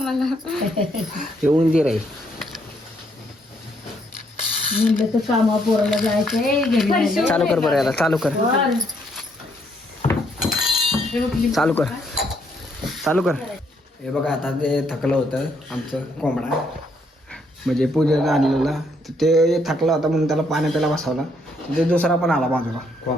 हे उंदीर आहे. कामा पोराला जायचंय चालू कर बरं याला चालू कर चालू कर चालू कर. हे बघा आता ते थकलं होतं आमचं कोंबडा म्हणजे पूजेला आणलेला तर ते थकला होता म्हणून त्याला पाणी प्यायला बसवला ते दुसरा पण आला बाजूला.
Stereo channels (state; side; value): normal; both; correlation 0.71